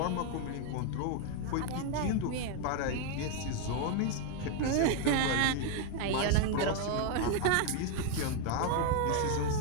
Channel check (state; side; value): different; both; correlation 0.01